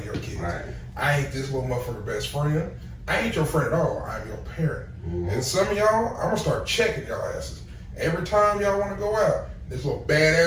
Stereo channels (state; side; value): identical; both; correlation 1.00